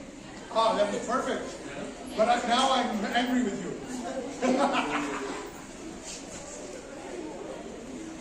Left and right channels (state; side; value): identical; both; correlation 1.00